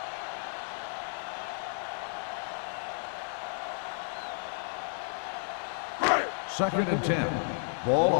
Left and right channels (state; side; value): silent; right; 56 dB below the other